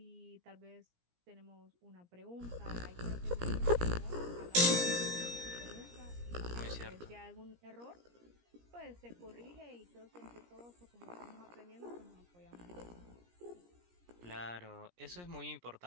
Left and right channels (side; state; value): left; late; 17 ms